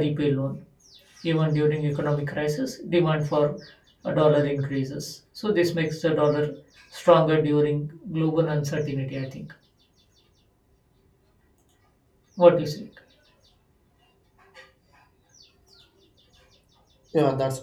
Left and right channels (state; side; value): identical; both; correlation 1.00